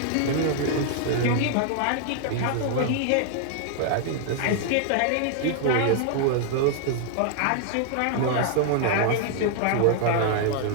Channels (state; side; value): different; both; correlation 0.00